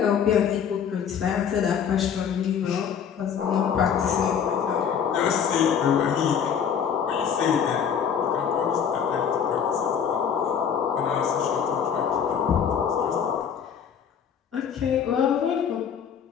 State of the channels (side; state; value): right; quieter; 7.7 dB